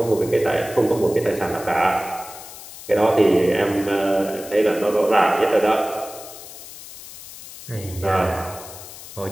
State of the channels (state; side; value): noise; left; hiss, 15 dB below the sound